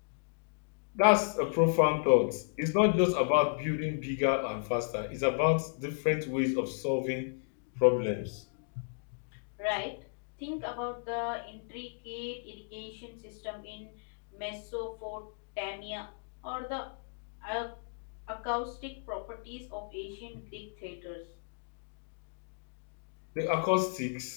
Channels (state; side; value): silent; right; digital silence